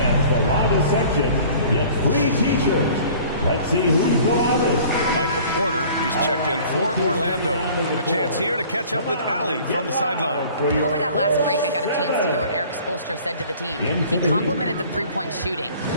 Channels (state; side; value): inverted; both; correlation -0.49